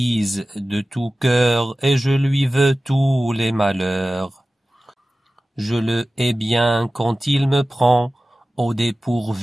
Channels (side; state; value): both; normal; correlation 0.96